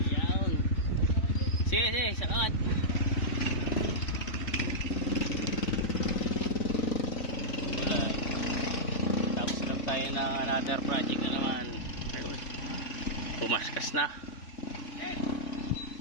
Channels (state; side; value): late; right; 3.6 ms